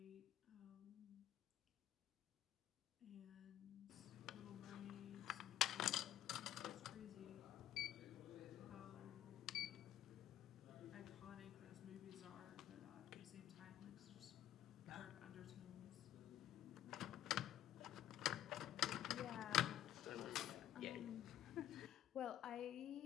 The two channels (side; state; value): right; quieter; 12.2 dB